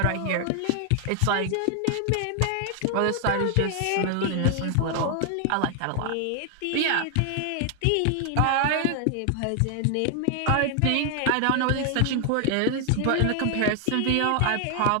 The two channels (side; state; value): both; different; correlation 0.00